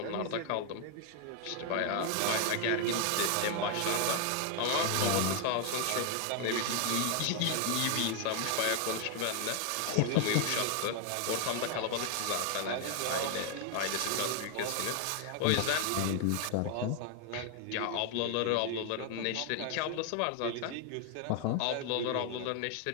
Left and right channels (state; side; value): different; both; correlation 0.00